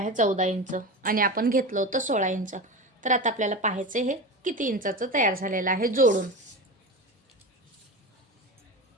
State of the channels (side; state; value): both; normal; correlation 0.25